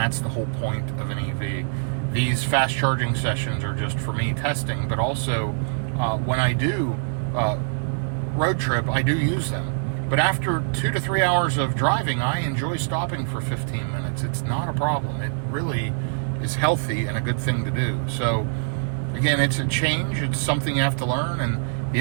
the whole point of an EV. These fast charging sessions are just for me testing, but also when I do road trip, I do use them. But after 2 to 3 hours of driving, I enjoy stopping for 15 minutes. It's not a problem. It really is healthy and a good thing to do. So again, it's a change. It's something you have to learn, and the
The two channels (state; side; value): silent; left; 61 dB below the other